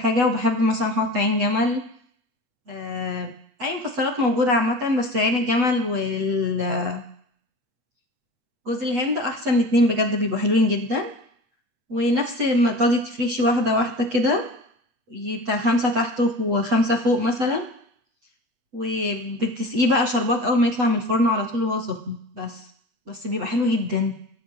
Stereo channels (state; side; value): late; left; 8.1 ms